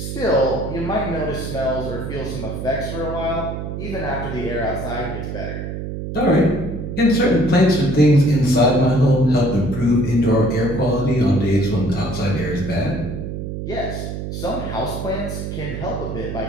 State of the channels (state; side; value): noise; right; hum, 6 dB below the sound